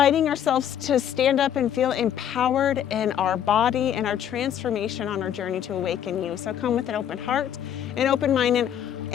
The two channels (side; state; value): right; quieter; 9.8 dB